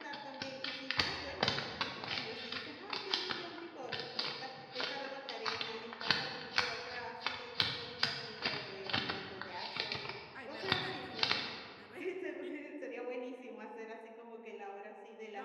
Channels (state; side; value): identical; both; correlation 1.00